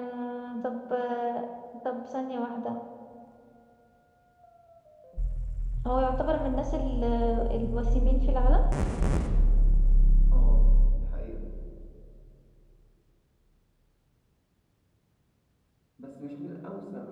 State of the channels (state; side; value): identical; both; correlation 1.00